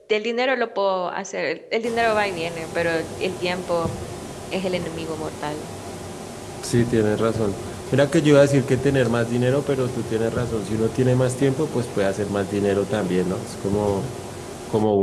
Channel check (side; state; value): both; identical; correlation 1.00